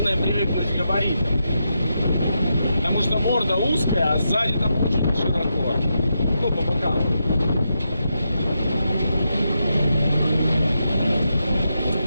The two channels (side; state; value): both; inverted; correlation -0.85